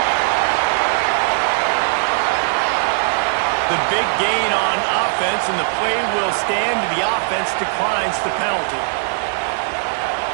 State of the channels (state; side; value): silent; left; digital silence